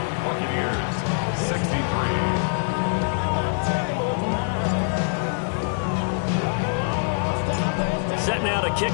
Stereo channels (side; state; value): right; silent; 63 dB below the other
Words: Buccaneers, 63. Set now to kick